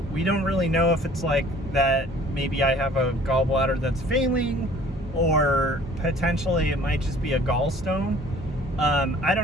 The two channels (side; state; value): both; normal; correlation 0.52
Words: we don't really know if it's like that maybe I have a gallbladder that's failing, or potentially it might just be a gallstone. I